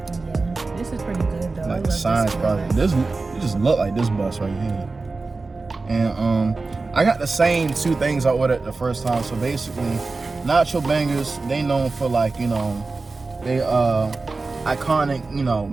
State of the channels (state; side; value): quieter; left; 3.8 dB